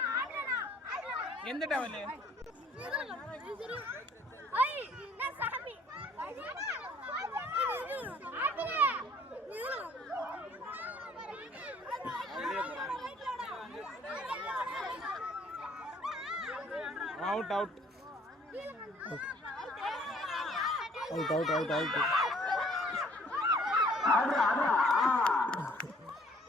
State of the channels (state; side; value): normal; both; correlation 0.58